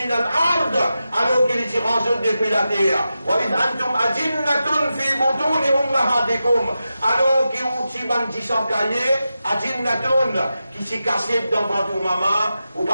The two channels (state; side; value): inverted; both; correlation -0.91